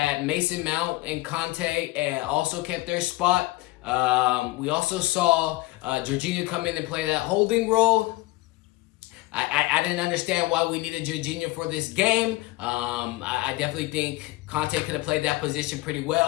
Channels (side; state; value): right; quieter; 19.4 dB